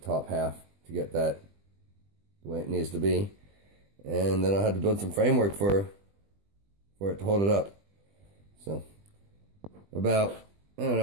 half to get that the way it needs to be. And then I'll have to build some framework for it to hold it up. So about, I don't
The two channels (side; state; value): left; late; 20 ms